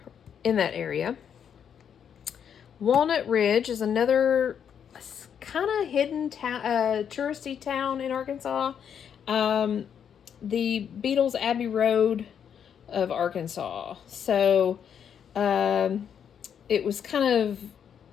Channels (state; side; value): quieter; right; 8.2 dB